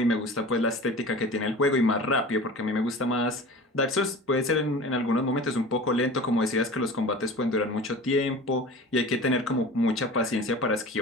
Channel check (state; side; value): normal; both; correlation 0.38